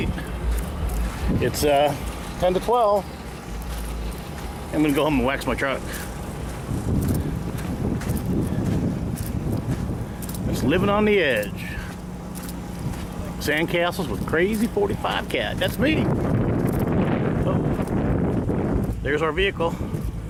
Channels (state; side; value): identical; both; correlation 1.00